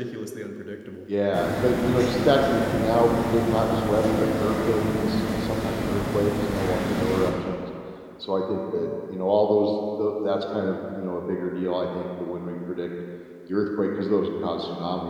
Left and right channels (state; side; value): identical; both; correlation 1.00